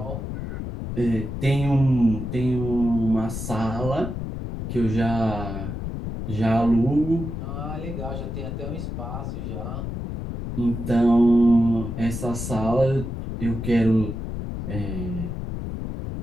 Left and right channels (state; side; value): noise; left; rumble, 6 dB below the sound